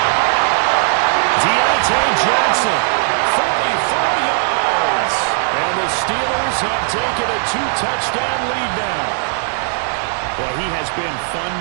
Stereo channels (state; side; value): silent; left; 68 dB below the other